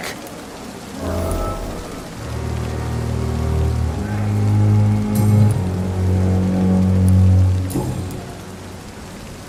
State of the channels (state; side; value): identical; both; correlation 1.00